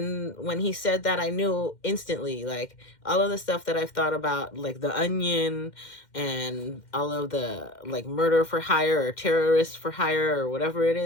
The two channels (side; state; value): right; late; 2.1 ms